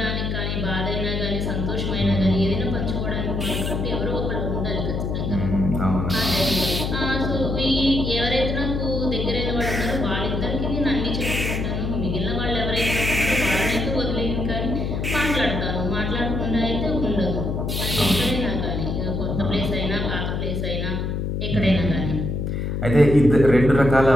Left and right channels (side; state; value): left; noise; hum, 1 dB below the sound